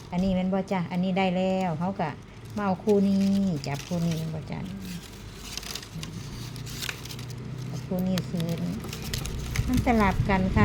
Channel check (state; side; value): identical; both; correlation 1.00